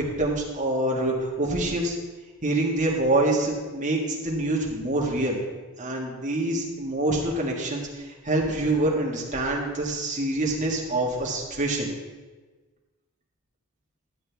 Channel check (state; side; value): normal; both; correlation 0.28